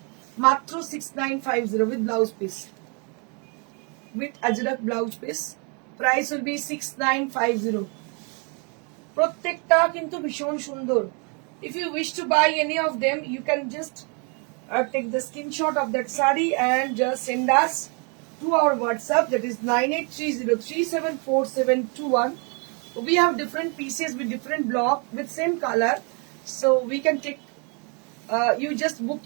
মাত্র 6950 with blouse piece, with Ajrak blouse piece, price will B 6950। প্রত্যেকটা কিন্তু ভীষণ সুন্দর। If you wish to buy any of them, you can just take the screenshot of that sari and just send us to our WhatsApp, that is 9830374721. We have different pieces with different block with same color, so we can take, you just book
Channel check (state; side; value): quieter; left; 35.5 dB